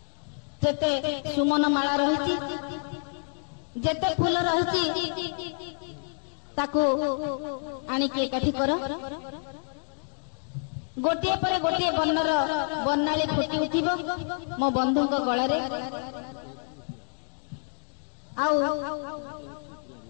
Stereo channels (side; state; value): right; silent; 57 dB below the other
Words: जेते सुमन माला रही जेते फूल रही ताकू आनिकी एकाठी कर गोटे पर गोटे वर्णर वर्णाली फुटी उठिब मो बंधु गलार